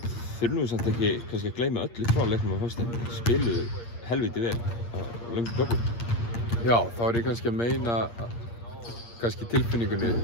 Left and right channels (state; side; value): late; right; 8.6 ms